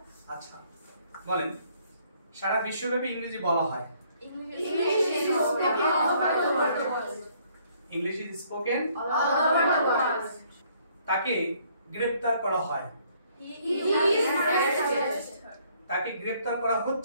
আচ্ছা। বলেন। সারা বিশ্বব্যাপী ইংরেজি বলা হয়। English is spoken all over the world. English is spoken All over the world. তাকে গ্রেফতার করা হয়। He is arrested. তাকে গ্রেফতার করা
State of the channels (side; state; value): both; inverted; correlation -0.64